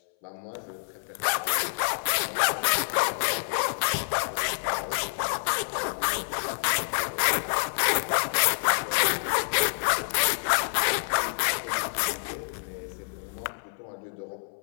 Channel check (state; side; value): silent; right; 60 dB below the other